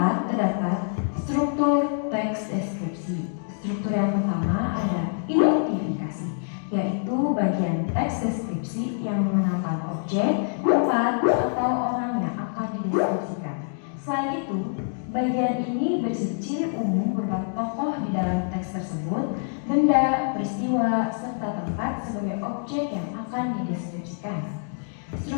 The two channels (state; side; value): silent; right; digital silence